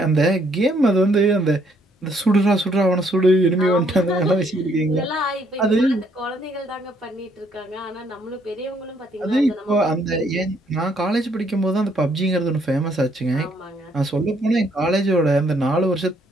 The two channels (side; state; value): both; normal; correlation 0.68